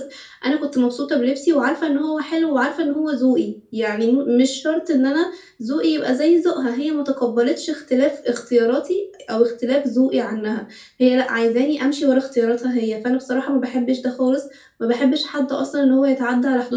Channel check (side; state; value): both; identical; correlation 1.00